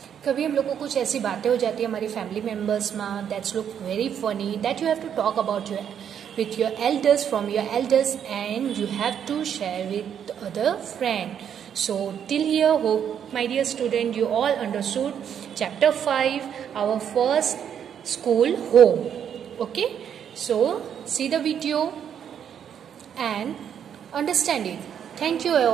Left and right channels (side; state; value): left; quieter; 8.7 dB